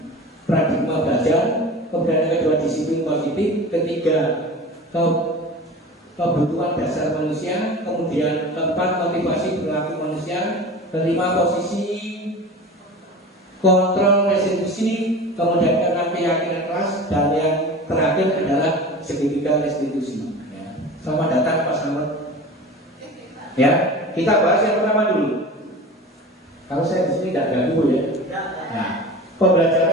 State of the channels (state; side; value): normal; both; correlation 0.35